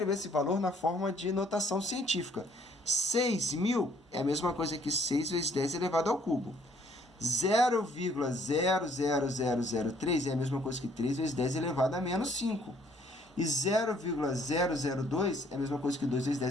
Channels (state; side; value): normal; both; correlation 0.62